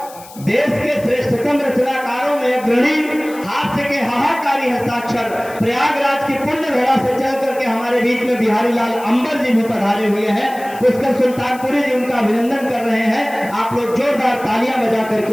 देश के श्रेष्ठतम रचनाकारों में अग्रणी, हास्य के हाहाकारी हस्ताक्षर, प्रयागराज की पुण्य धरा से चल करके हमारे बीच में बिहारी लाल अंबर जी भी पधारे हुए हैं। पुष्कर सुल्तानपुरी जी उनका अभिनंदन कर रहे हैं। आप लोग जोरदार तालियां बजा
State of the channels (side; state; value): left; noise; hiss, 20 dB below the sound